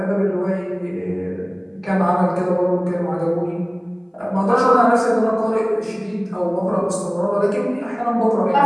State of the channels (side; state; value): both; identical; correlation 1.00